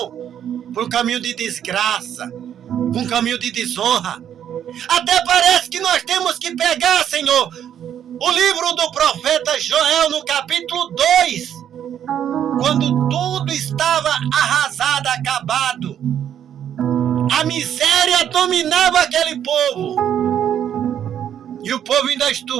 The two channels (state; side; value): quieter; left; 9.7 dB